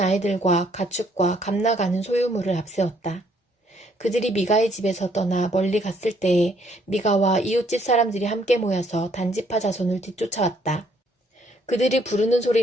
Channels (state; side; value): normal; both; correlation 0.67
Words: 가축과 감나가는 소유물을 앞세웠다. 그들이 미가의 집에서 떠나 멀리 갔을 때에 미가와 이웃집 사람들이 함께 모여서 단지파 자손을 뒤쫓아왔다. 그들이 부르는